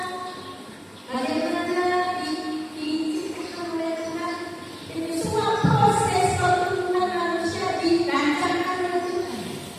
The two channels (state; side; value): identical; both; correlation 1.00